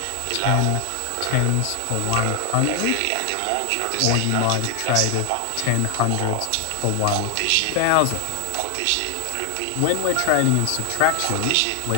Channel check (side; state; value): both; different; correlation 0.00